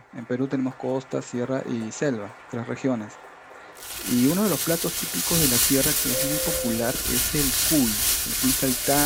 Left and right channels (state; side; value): identical; both; correlation 1.00